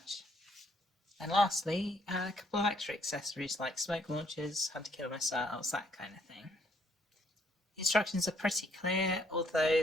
And lastly, a couple of extra accessories like smoke launchers, hunter-killer missiles, that kind of thing. The instructions are pretty clear, although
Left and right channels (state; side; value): normal; both; correlation 0.68